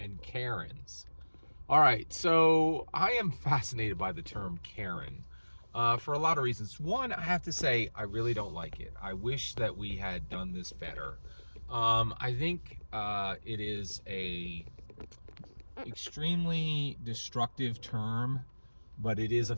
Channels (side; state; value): both; inverted; correlation -1.00